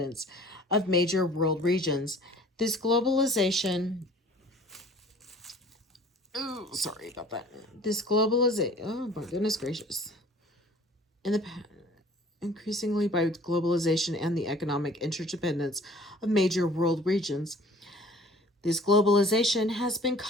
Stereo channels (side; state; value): both; normal; correlation 0.50